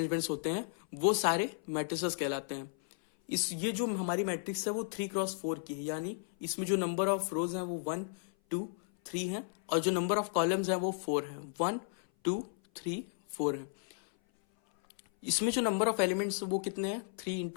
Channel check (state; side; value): silent; right; 55 dB below the other